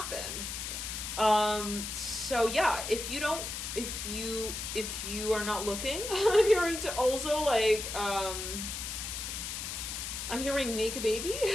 So yeah, if you are not looking, I'm hearing to also like, I'm hearing make a baby.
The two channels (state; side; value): noise; left; hiss, 5 dB below the sound